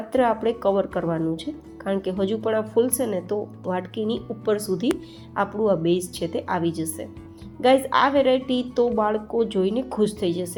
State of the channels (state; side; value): identical; both; correlation 1.00